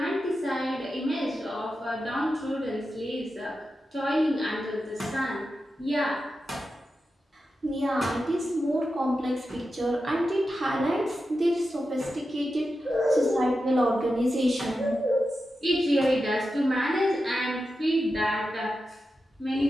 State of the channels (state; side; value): normal; both; correlation 0.90